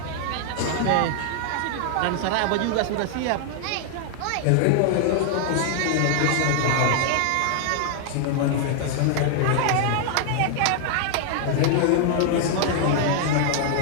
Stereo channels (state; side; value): different; both; correlation 0.00